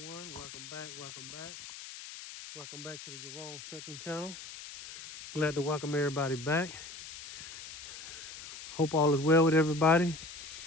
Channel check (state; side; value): noise; left; hiss, 12 dB below the sound